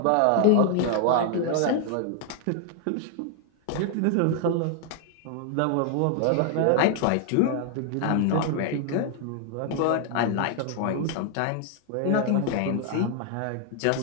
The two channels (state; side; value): different; both; correlation 0.00